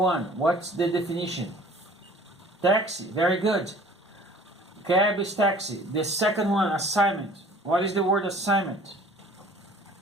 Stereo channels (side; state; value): both; normal; correlation 0.50